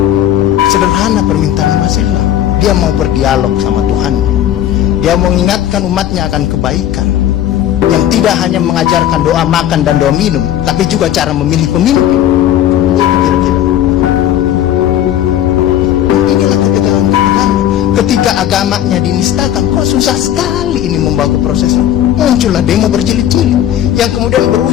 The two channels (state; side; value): quieter; right; 11.4 dB